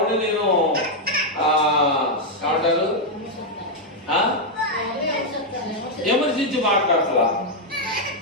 నేను ఏమంటారు విమర్శించి మాట్లాడతా.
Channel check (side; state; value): both; normal; correlation 0.00